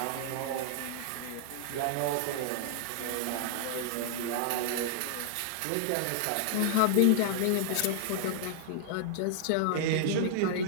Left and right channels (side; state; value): both; different; correlation -0.01